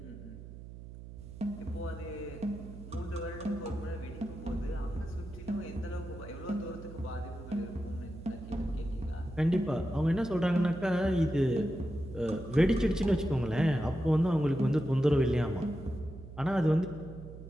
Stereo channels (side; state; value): right; noise; hum, 14 dB below the sound